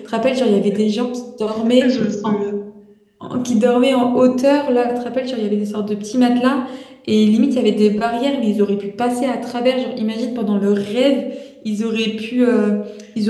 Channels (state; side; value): identical; both; correlation 1.00